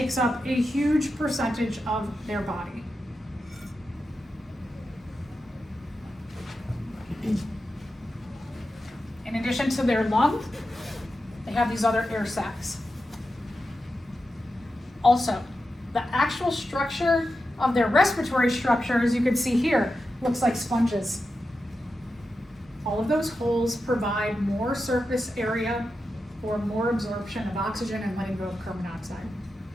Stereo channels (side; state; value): both; normal; correlation 0.90